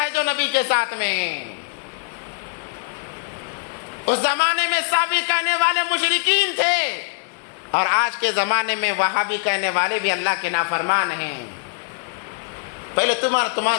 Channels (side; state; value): right; quieter; 37.7 dB